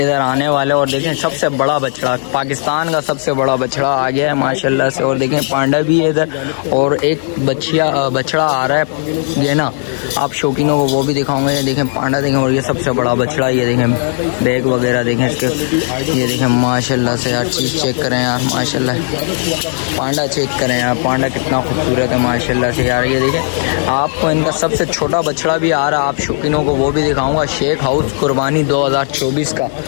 आने वाला है। और देखें सबसे बड़ा बछड़ा, पाकिस्तान का सबसे बड़ा बछड़ा आ गया है माशाल्लाह से। और देखें पांडा भी है इधर, और एक बछड़ा आ रहा है ये ना, आप शौकीनों को वो भी दिखाऊंगा। ये देखें पांडा देखें, और ये सबसे बड़ा बछड़ा। ये देखें बैग वगैरह देखें इसके, ये देखें माशाल्लाह से यार। चीज़ चेक करें यार माशाल्लाह, पांडा चेक करें यार, पांडा कितना खूबसूरत है माशाल्लाह से यार। ये देखें आपको इनका सबसे छोटा बछड़ा भी आ रहा है, आप शौकीनों को वो भी दिखाऊंगा। शेख हाउस कुर्बानी 2024 का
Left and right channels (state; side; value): silent; right; digital silence